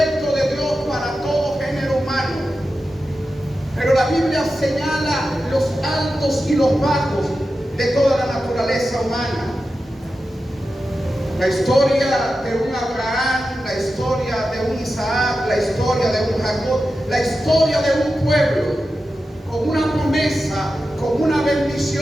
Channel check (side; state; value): both; normal; correlation 0.91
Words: de Dios para todo género humano. Pero la Biblia señala los altos y los bajos de toda la naturaleza humana. La historia de un Abraham, la historia de un Isaac, la historia de un Jacob, la historia de un pueblo con una promesa, con una